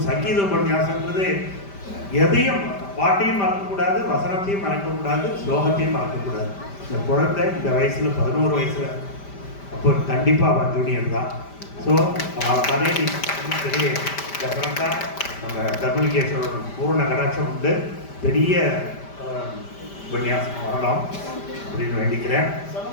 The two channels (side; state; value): right; late; 5.1 ms